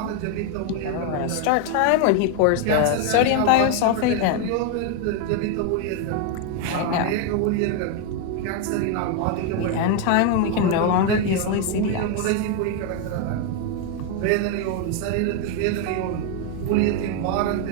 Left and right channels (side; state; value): both; different; correlation 0.01